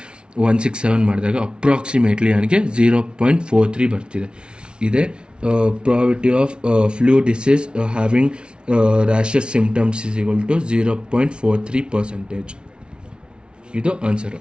ಮಾಡಿದಾಗ ಅಪ್ರಾಕ್ಸಿಮೇಟ್ಲಿ ನನಗೆ 0.43 ಬರ್ತಿದೆ. ಇದೇ probability of flu disease having rashes symptoms is equal to 0.43%. ಇದು ಆನ್ಸರು.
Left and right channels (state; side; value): late; left; 0.056 ms